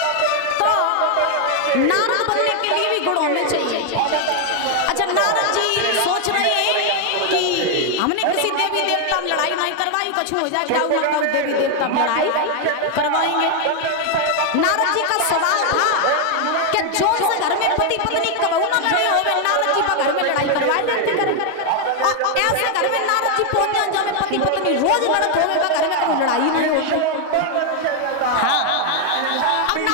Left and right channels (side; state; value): both; different; correlation 0.00